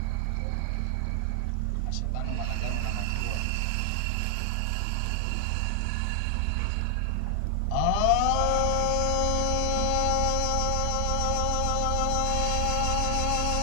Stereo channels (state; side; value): different; both; correlation 0.00